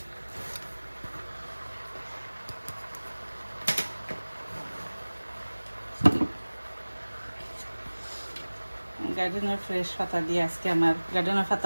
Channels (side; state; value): both; inverted; correlation -1.00